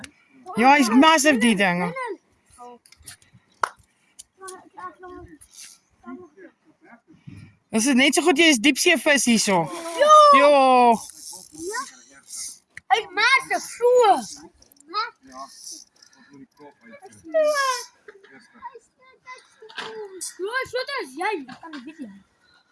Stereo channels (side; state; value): both; identical; correlation 1.00